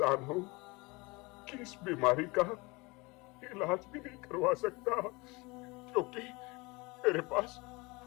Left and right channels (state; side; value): quieter; right; 25.3 dB